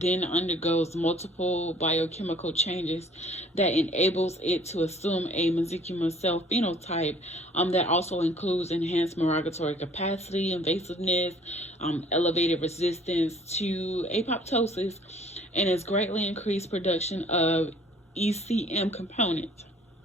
then undergoes multiple biochemical changes that enables it to assume a mesenchymal cell phenotype that also includes enhanced migratory capacity, invasiveness, elevated resistance to apoptosis, and its greatly increased production of ECM components.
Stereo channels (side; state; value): both; normal; correlation 0.55